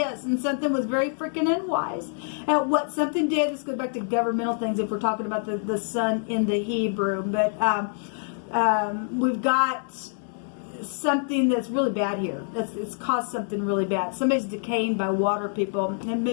and something was very freaking unwise. And what something did, this goes back to governmental things if we're talking about the sun in the Hebrew. But we've got something that's really bad here. It's caused something really bad. Somebody's decaying by water, people. And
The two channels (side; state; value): right; silent; digital silence